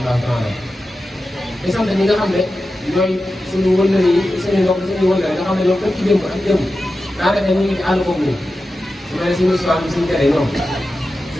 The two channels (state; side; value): normal; both; correlation 0.92